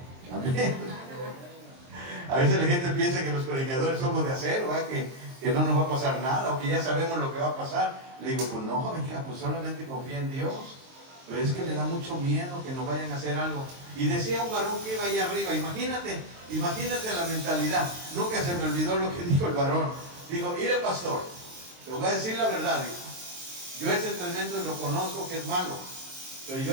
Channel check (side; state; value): left; late; 23 ms